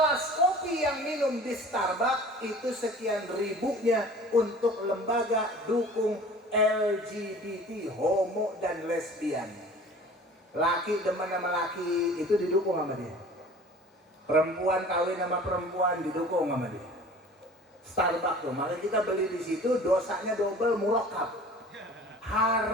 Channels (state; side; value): normal; both; correlation 0.45